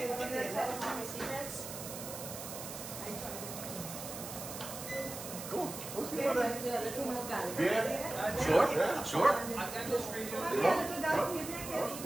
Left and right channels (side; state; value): right; noise; hiss, 9 dB below the sound